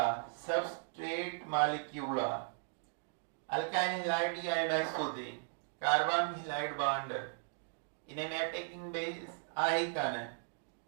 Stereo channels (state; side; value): silent; left; digital silence